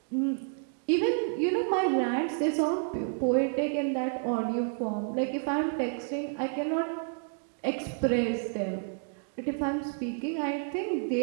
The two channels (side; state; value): left; silent; 58 dB below the other